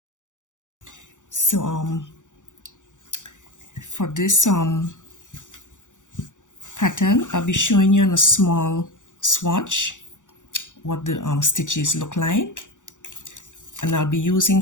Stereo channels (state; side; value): late; right; 0.86 ms